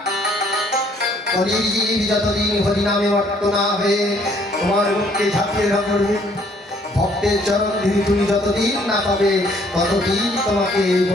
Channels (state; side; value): normal; both; correlation 0.63